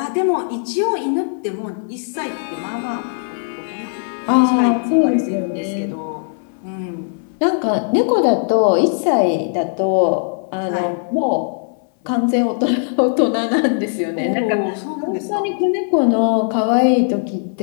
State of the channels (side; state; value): right; silent; 62 dB below the other